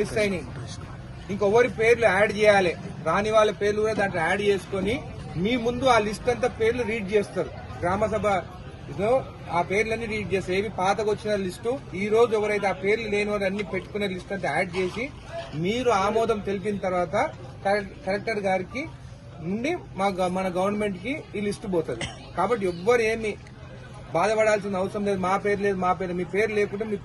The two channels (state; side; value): identical; both; correlation 1.00